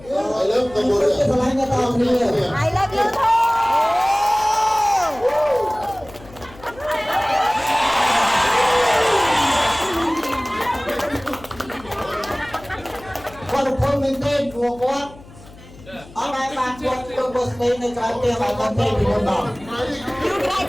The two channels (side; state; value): left; noise; hum, 21 dB below the sound